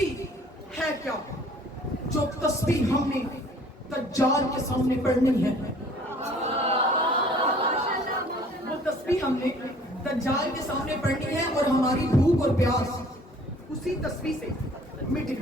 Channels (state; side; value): normal; both; correlation 0.54